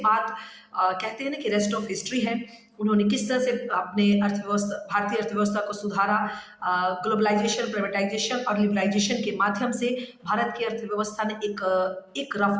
कहते हैं ना कि रेस्ट ऑफ हिस्ट्री है। उन्होंने किस तरह से अपने भारतीय अर्थव्यवस्था को सुधारा। ग्लोबलाइजेशन, प्राइवेटाइजेशन और लिबरलाइजेशन के माध्यम से भारत की अर्थव्यवस्था ने एक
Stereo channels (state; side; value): identical; both; correlation 1.00